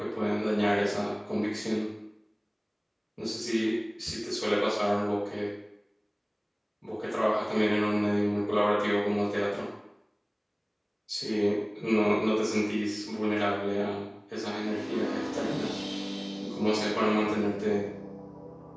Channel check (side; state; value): both; identical; correlation 1.00